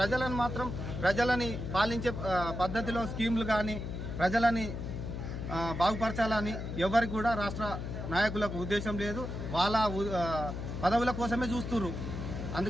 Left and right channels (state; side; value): noise; left; hum, 6 dB below the sound